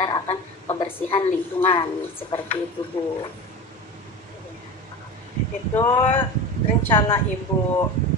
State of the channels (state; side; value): normal; both; correlation 0.29